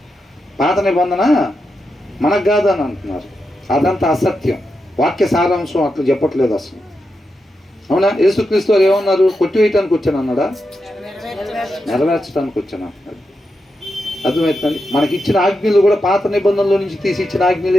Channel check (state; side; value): normal; both; correlation 0.87